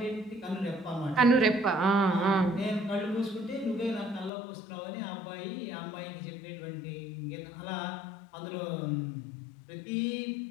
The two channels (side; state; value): right; drops out; at 4.3 s